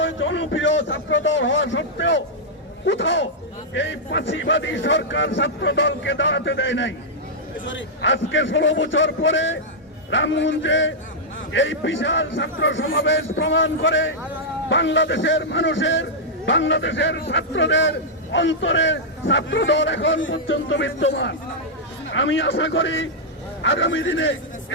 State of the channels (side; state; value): both; normal; correlation -0.07